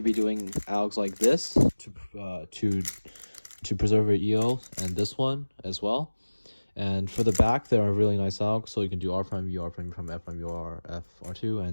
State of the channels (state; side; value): inverted; both; correlation -1.00